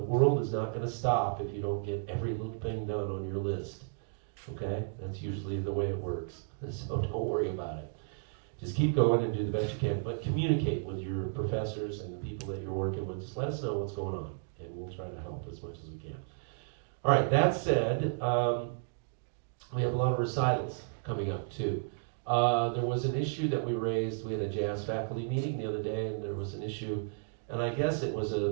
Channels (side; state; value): left; silent; digital silence